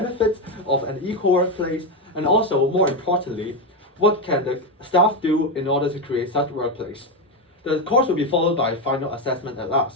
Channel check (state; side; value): normal; both; correlation 0.09